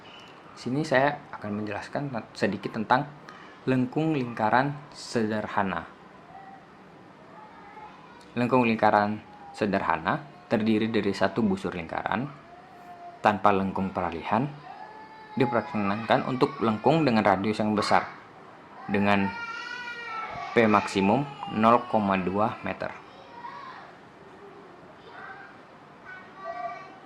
Sini saya akan menjelaskan sedikit tentang lengkung lingkaran sederhana. Lengkung lingkaran sederhana terdiri dari satu busur lingkaran tanpa lengkung peralihan, diperkenankan untuk lengkung dengan radius yang besar dengan P maksimum 0,2 meter.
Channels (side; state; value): both; identical; correlation 1.00